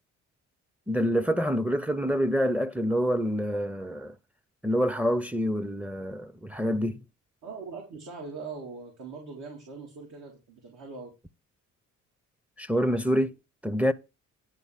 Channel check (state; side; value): normal; both; correlation 0.85